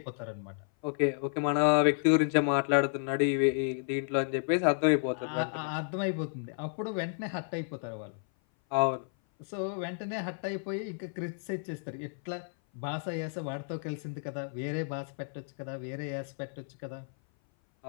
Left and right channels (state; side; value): silent; right; 56 dB below the other